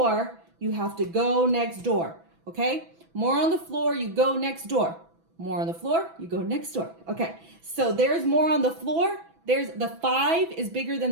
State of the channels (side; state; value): left; late; 6.0 ms